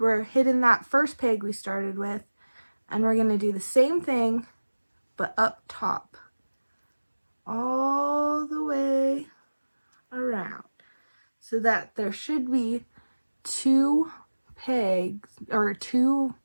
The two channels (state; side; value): inverted; both; correlation -1.00